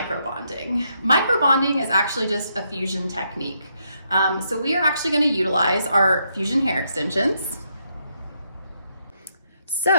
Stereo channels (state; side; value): inverted; both; correlation -0.77